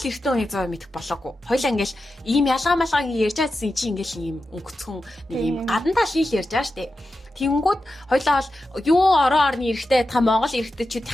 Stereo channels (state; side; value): normal; both; correlation 0.91